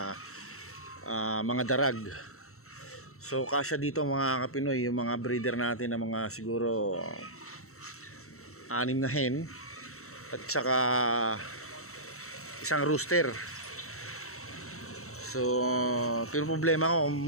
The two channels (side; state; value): right; late; 0.63 ms